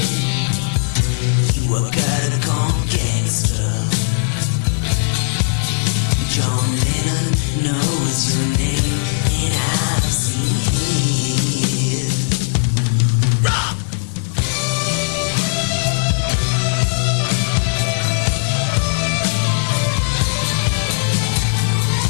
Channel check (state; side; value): silent; right; digital silence